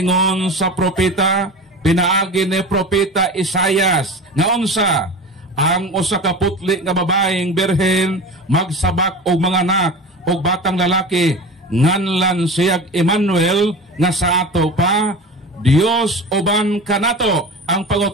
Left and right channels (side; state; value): both; normal; correlation 0.32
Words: sa propeta pinaagi ni propeta Isaias nga unsa ang usa ka putli nga babaeng berhen magsabak og mga anak og batang lalaki nganlan siyag Emmanuel nga sa ato pa Dios uban kanato. Ang